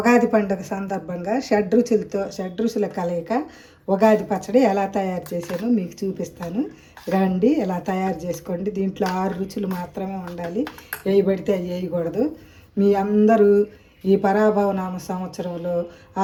పండుగ సందర్భంగా షడ్రుచుల కలయిక ఉగాది పచ్చడి ఎలా తయారు చేశానో మీకు చూపిస్తాను. రండి, ఎలా తయారు చేసుకోండి. దీంట్లో 6 రుచులు మాత్రమే ఉండాలి, వేయబడితే వేయకూడదు. మీ అందరూ ఈ పరాభవనామ సంవత్సరంలో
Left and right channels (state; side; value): identical; both; correlation 1.00